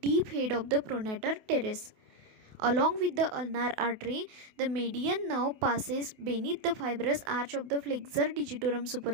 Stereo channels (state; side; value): late; left; 28 ms